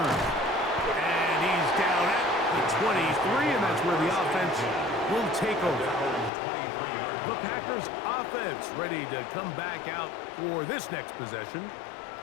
And he's down at the 23, and that's where the offense will take over. The Packers offense ready to come back out for this next possession.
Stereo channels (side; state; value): right; drops out; at 6.3 s